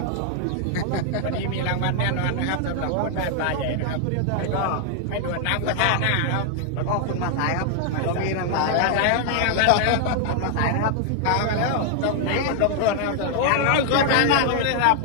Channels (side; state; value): both; different; correlation 0.00